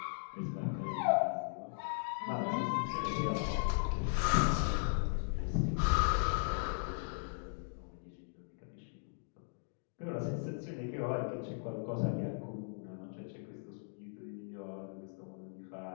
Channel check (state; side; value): silent; right; digital silence